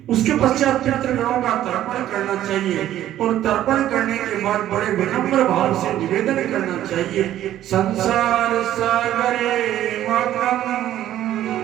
उसके पश्चात पितृगणों का तर्पण करना चाहिए और तर्पण करने के बाद बड़े विनम्र भाव से निवेदन करना चाहिए। संसार सागरे मग्नं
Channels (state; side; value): quieter; left; 12.5 dB